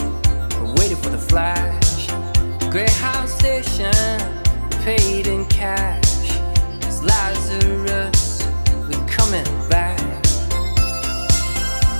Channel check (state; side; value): inverted; both; correlation -1.00